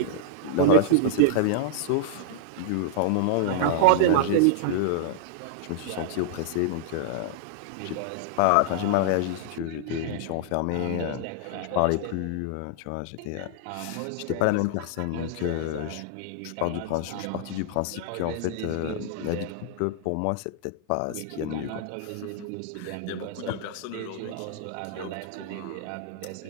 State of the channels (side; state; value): both; different; correlation -0.01